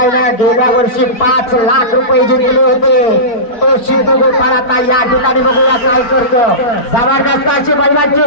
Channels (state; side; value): late; right; 4.4 ms